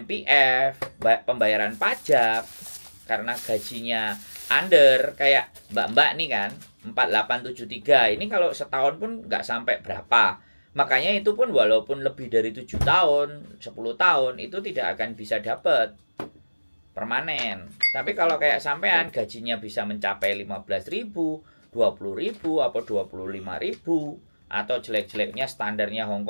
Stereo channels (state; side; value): inverted; both; correlation -1.00